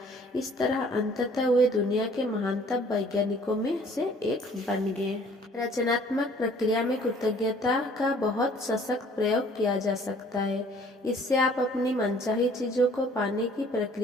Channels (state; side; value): normal; both; correlation 0.55